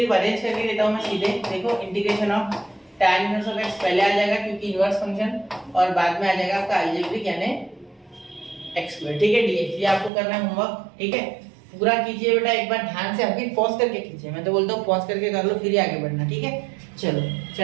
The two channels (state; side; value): drops out; left; at 10.1 s